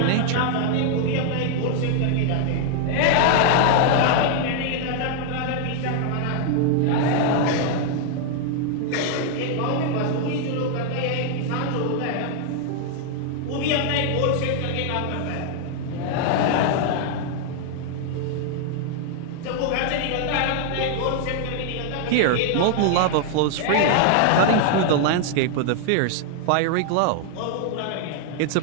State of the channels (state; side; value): different; both; correlation 0.00